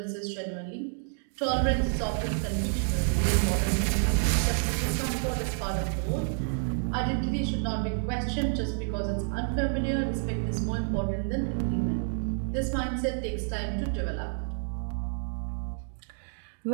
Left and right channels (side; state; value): left; silent; 58 dB below the other